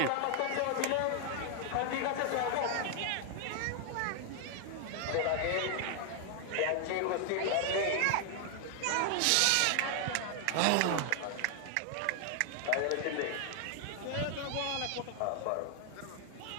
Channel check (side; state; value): both; different; correlation 0.00